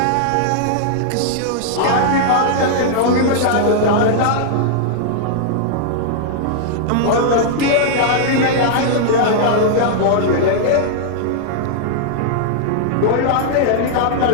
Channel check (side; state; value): both; different; correlation -0.01